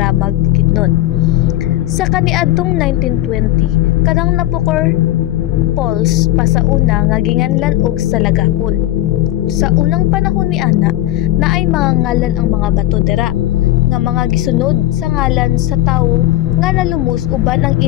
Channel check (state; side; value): quieter; right; 15.1 dB